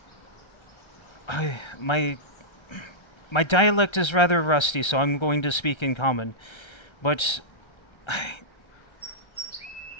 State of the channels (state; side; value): late; right; 1.3 ms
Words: My dialect is rather rusty, so I'm going to speak in common. But